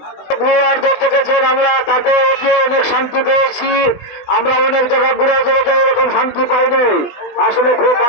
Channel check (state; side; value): late; right; 20 ms